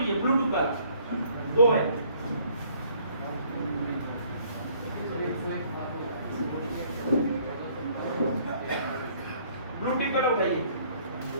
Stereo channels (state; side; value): inverted; both; correlation -0.61